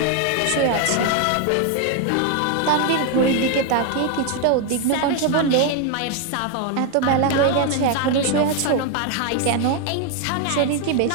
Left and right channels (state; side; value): different; both; correlation 0.01